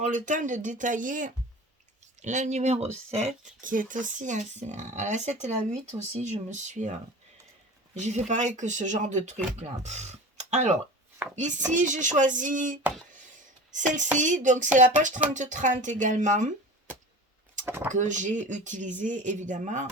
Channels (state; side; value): normal; both; correlation 0.36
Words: le temps de détailler la numéro 7 qui est aussi à la 7 et la 8 aussi. J'ai fait pareil que ce genre de truc là. Alors, ici, j'ai choisi celle-ci. Donc, c'est la page 30-30 également que j'ai utilisé évidemment